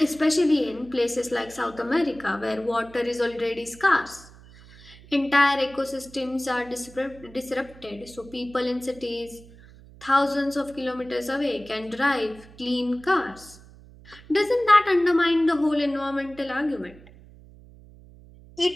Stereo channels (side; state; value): right; noise; hum, 22 dB below the sound